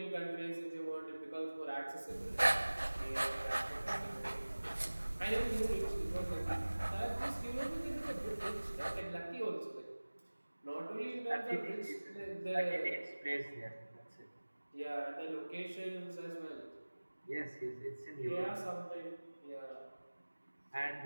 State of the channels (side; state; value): both; inverted; correlation -1.00